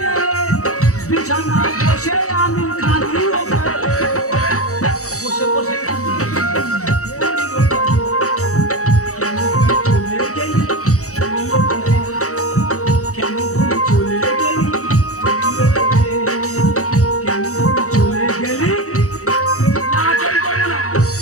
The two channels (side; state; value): right; late; 0.65 ms